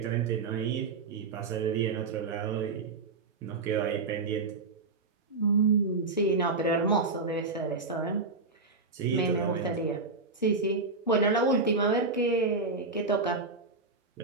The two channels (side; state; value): left; quieter; 4.0 dB